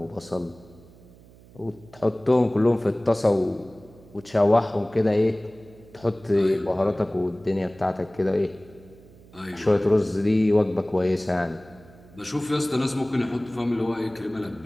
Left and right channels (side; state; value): right; noise; hum, 24 dB below the sound